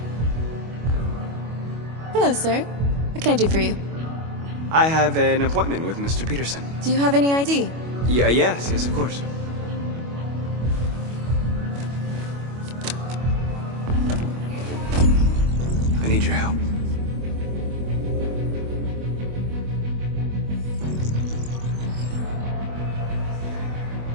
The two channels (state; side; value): late; left; 25 ms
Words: Hello, sir. What can I do for you? I have an appointment with Mr. Peterson. Do you have any ID? Yes, of course. I need your help.